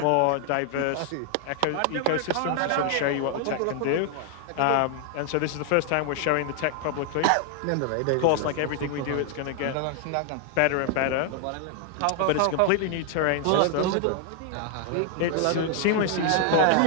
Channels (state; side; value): different; both; correlation 0.00